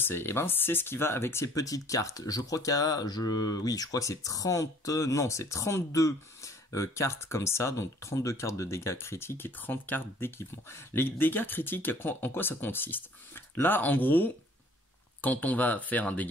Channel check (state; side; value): normal; both; correlation 0.55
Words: Eh ben c'est ce qui va avec ces petites cartes. Je crois qu'il y a, je crois que c'est 32 cartes comme ça, donc 32 cartes de dégâts critiques et 30 cartes d'équipement. Les dégâts critiques, en quoi ça consiste? Là en gros, quand on va faire un